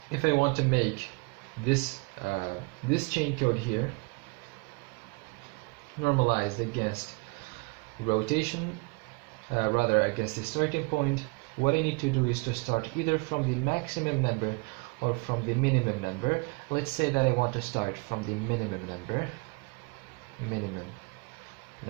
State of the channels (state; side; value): quieter; left; 29.3 dB